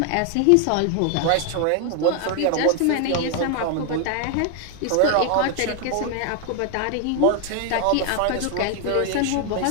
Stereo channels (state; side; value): different; both; correlation 0.00